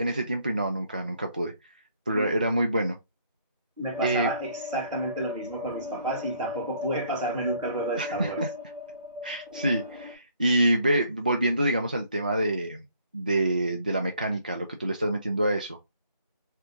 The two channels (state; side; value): inverted; both; correlation -0.64